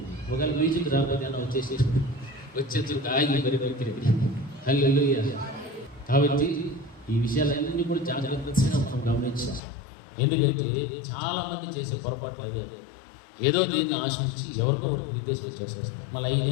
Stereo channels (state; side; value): drops out; right; at 9.6 s